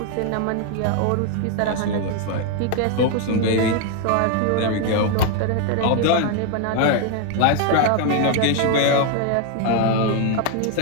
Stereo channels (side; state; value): both; different; correlation 0.01